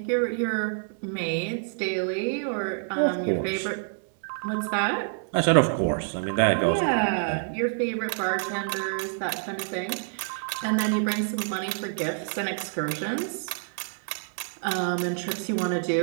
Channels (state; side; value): silent; left; digital silence